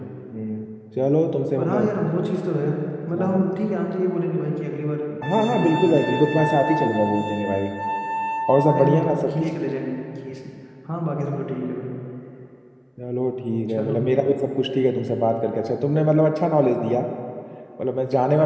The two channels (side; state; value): both; identical; correlation 1.00